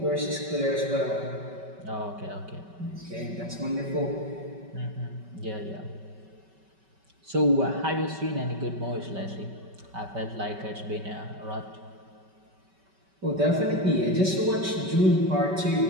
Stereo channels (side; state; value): left; late; 5.2 ms